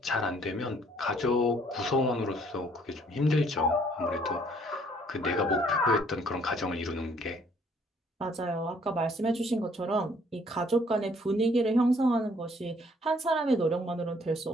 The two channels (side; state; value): both; normal; correlation 0.62